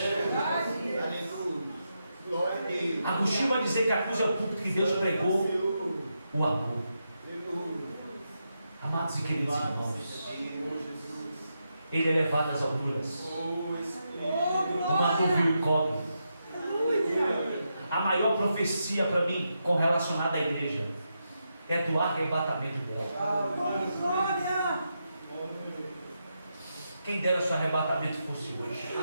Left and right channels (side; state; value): both; inverted; correlation -0.85